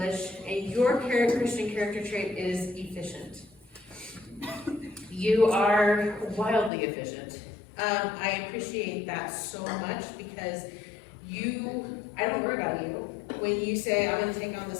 and your Christian character trait is efficient. You are wildly efficient. I appreciate that so much, because I don't worry about you. When you say, I'm gonna take on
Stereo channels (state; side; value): drops out; right; at 6.7 s